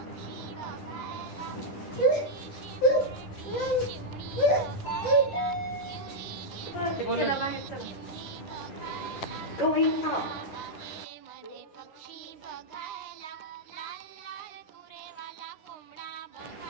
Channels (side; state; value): right; late; 9.8 ms